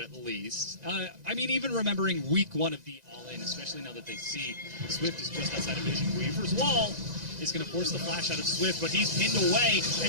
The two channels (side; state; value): left; late; 2.0 ms